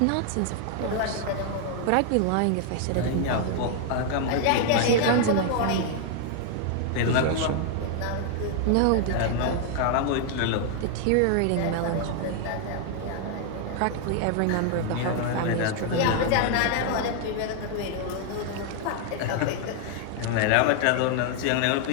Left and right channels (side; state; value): both; different; correlation 0.00